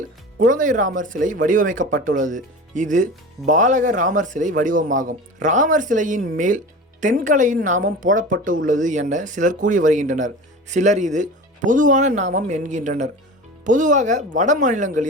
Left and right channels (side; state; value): both; normal; correlation 0.34